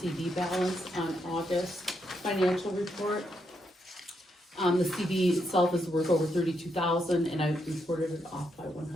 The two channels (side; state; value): both; normal; correlation 0.80